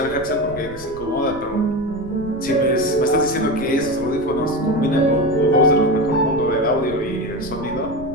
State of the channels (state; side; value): noise; right; rumble, 18 dB below the sound